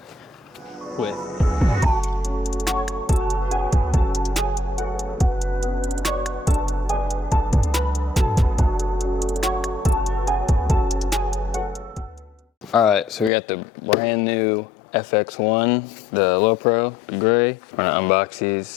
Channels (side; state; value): right; drops out; at 13.3 s